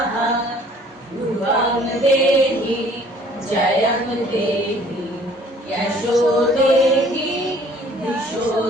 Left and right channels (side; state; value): both; normal; correlation 0.55